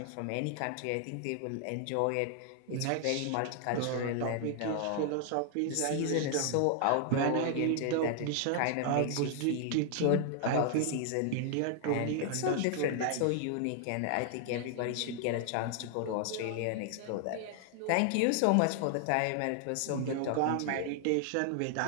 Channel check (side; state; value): both; different; correlation 0.00